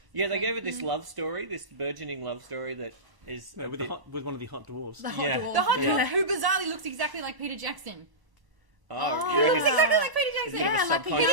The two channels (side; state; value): left; late; 1.0 ms